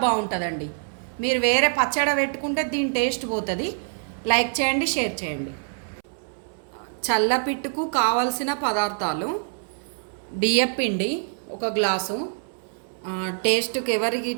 బాగుంటుందండి. మీరు వేరే పచ్చడి పెట్టుకుంటే దీని టేస్ట్ పోతుంది. లైక్ చేయండి, షేర్ చేయండి. చల్లపిట్టుకు కావలసిన పదార్థాలు: బియ్యపిండి 1 గ్లాసు, టేస్ట్కి ఎవరికి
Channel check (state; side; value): silent; left; 62 dB below the other